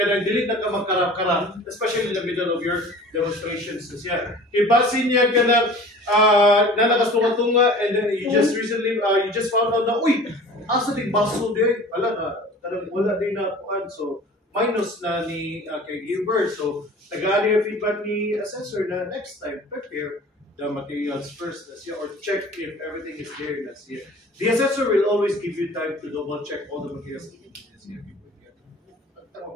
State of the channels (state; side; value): normal; both; correlation 0.43